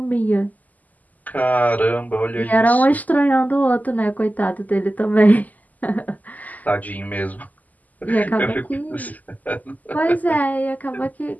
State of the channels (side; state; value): right; late; 0.079 ms